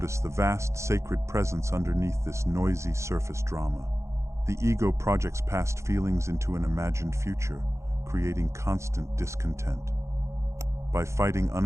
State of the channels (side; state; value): left; late; 0.14 ms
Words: the vast sacred presence underneath this noisy surface drama. The ego projects past feelings into an imagined future, creating constant discontent. By fighting